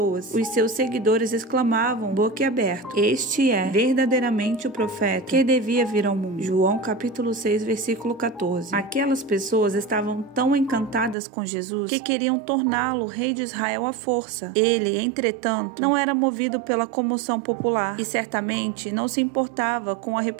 os seus seguidores exclamavam boquiaberto: "Este é verdadeiramente o profeta que devia vir ao mundo." João capítulo 6, versículo 14. Aquelas pessoas estavam tão encantadas com Jesus que queriam torná-lo rei de Israel à força. Ele, entretanto, não era movido pela comoção popular e certamente não se importava com a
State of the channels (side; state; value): left; drops out; at 11.2 s